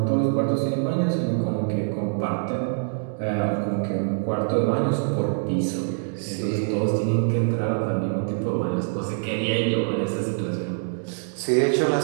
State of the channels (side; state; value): left; silent; digital silence